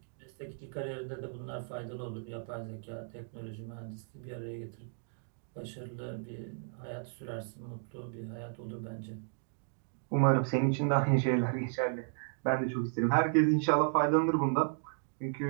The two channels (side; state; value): left; silent; digital silence